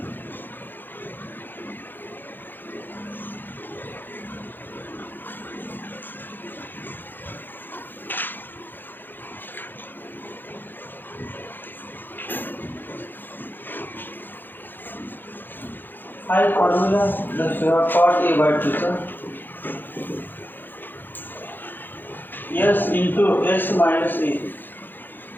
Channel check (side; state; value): right; late; 0.092 ms